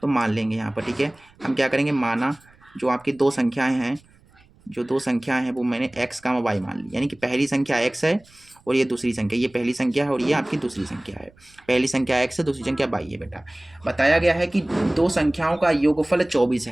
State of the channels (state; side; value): noise; right; rumble, 29 dB below the sound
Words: तो मान लेंगे यहाँ पर। ठीक है, हम क्या करेंगे, माना जो आपकी 2 संख्याएं हैं, जो 2 संख्याएं हैं वो मैंने x का y मान ली, यानी कि पहली संख्या x है और ये दूसरी संख्या, ये पहली संख्या है और ये आपकी दूसरी संख्या है। पहली संख्या x है, दूसरी संख्या y है बेटा। बताया गया है कि 2 संख्याओं का योगफल 24